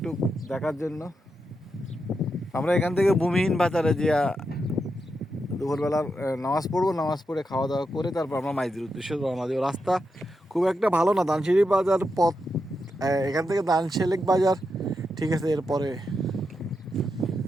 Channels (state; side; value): normal; both; correlation 0.85